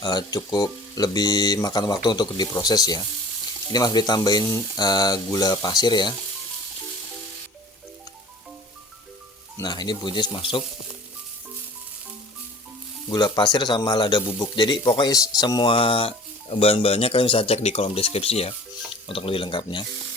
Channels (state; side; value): normal; both; correlation 0.46